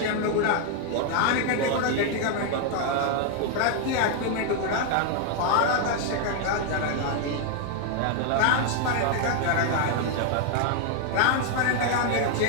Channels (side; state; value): both; different; correlation 0.00